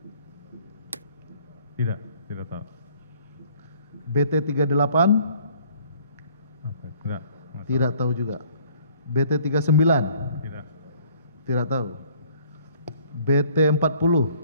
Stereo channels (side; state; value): both; inverted; correlation -0.58